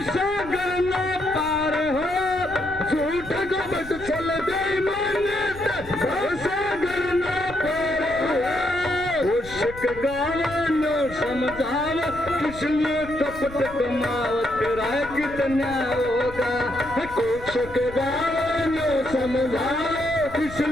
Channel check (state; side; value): noise; left; rumble, 16 dB below the sound